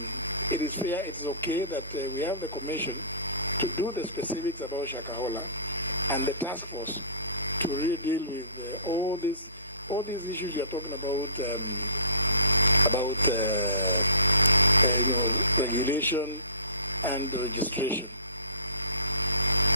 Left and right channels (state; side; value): inverted; both; correlation -0.47